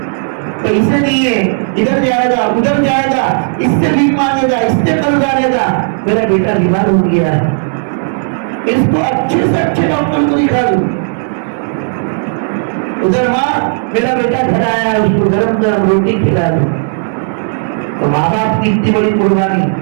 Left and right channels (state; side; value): silent; left; digital silence